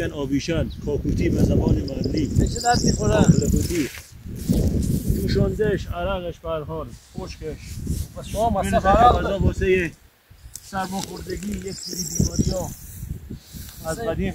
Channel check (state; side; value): identical; both; correlation 1.00